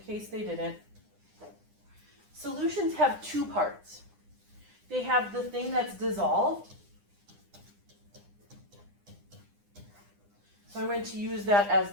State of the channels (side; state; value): left; late; 9.9 ms